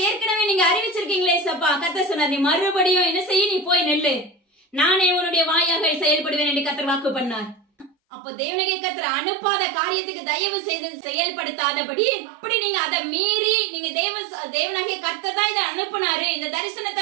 ஏற்கனவே நீங்க அறிவிச்சிருக்கீங்களே சப்பா. கர்த்தர் சொன்னார், நீ மறுபடியும் என்ன செய்ய, நீ போய் நெல்லு, நானே உன்னுடைய வாயாக செயல்படுவேன் என்று கர்த்தர் வாக்கு பண்ணார். அப்போ தேவனாகிய கர்த்தர் அனுப்பாத காரியத்துக்கு தயவு செய்து செயல்படுத்தாதபடி, அப்படி நீங்க அதை மீறி நீங்க தேவனாகிய கர்த்தர் தான் இதை அனுப்புனாரு, இந்த தரிசனத்தை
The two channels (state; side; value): drops out; left; at 8.0 s